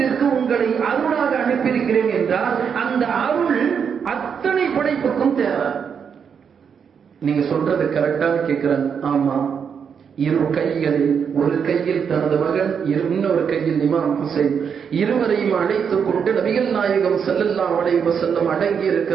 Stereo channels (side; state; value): left; quieter; 7.0 dB